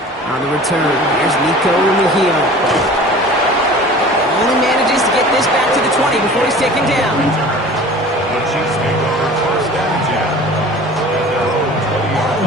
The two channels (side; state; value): both; normal; correlation 0.42